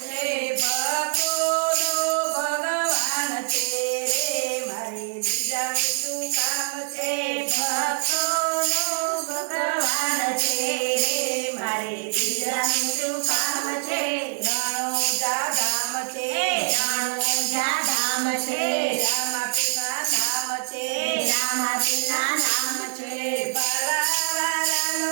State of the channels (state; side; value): silent; left; digital silence